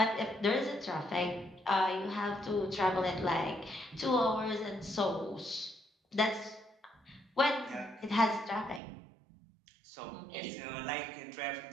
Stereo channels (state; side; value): drops out; left; at 8.8 s